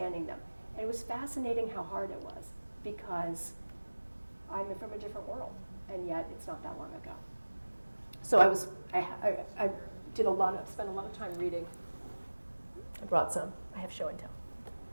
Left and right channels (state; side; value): inverted; both; correlation -1.00